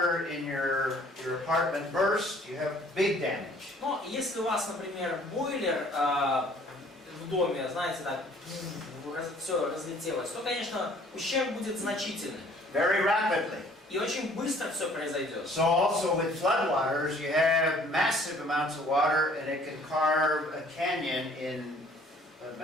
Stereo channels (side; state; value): both; normal; correlation 0.56